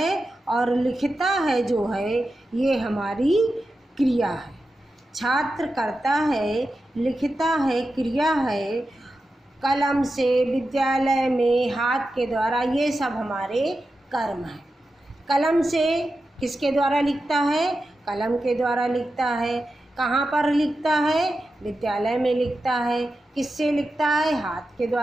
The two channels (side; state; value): both; normal; correlation 0.91